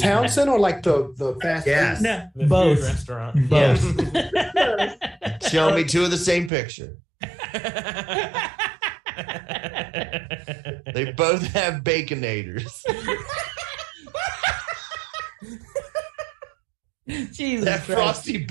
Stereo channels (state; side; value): drops out; left; at 6.5 s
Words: or like the fast Yes. No, The both. food restaurant. Both. Show me two of the same picture. They both have baconators. Jesus That Christ. frosty